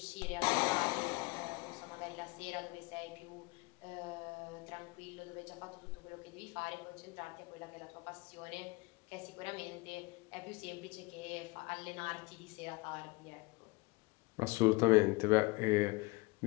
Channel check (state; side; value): quieter; right; 25.6 dB